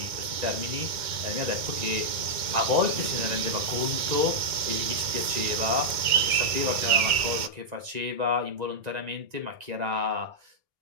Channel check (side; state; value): left; late; 2.1 ms